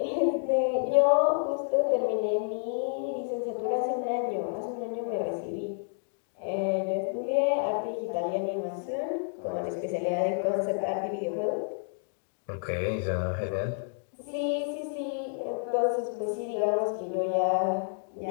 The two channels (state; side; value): silent; right; digital silence